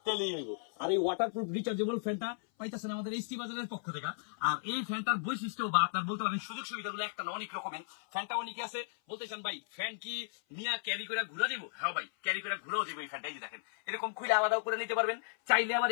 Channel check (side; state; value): right; silent; 54 dB below the other